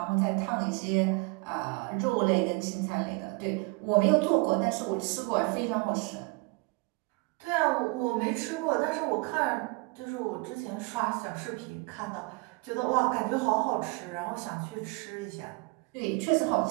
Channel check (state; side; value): quieter; left; 27.1 dB